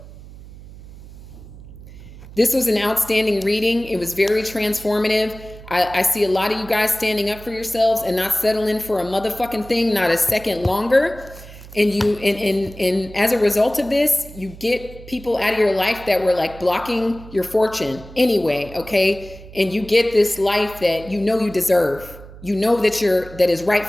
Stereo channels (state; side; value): noise; right; hum, 17 dB below the sound